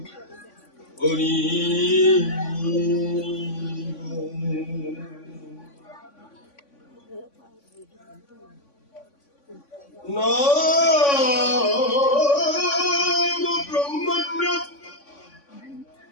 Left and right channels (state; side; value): late; right; 3.5 ms